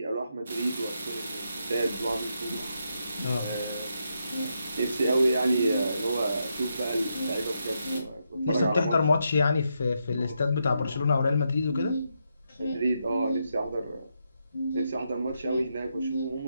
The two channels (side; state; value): both; inverted; correlation -0.82